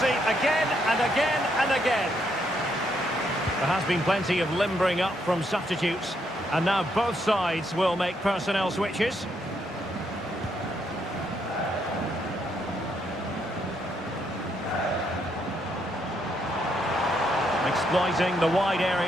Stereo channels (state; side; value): normal; both; correlation 0.75